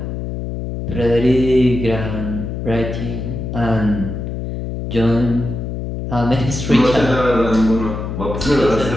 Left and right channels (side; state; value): left; noise; hum, 5 dB below the sound